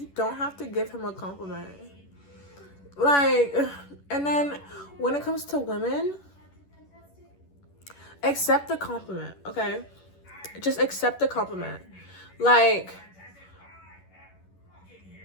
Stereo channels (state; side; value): late; right; 11 ms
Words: don't have to give him a compliment. Like, and then when it comes to women, accept the compliment, okay? Just accept the compliment. Like,